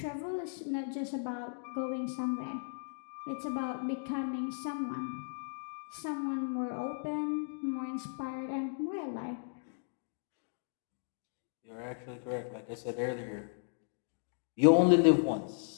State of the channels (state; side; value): silent; right; digital silence